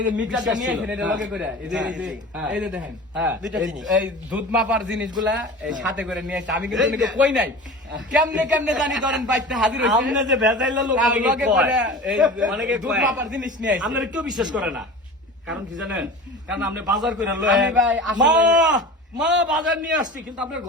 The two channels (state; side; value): normal; both; correlation 0.35